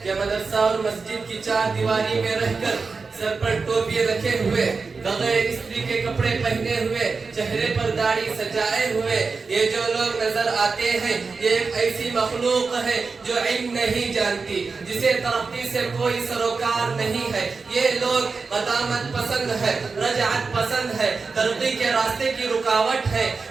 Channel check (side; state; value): left; quieter; 4.5 dB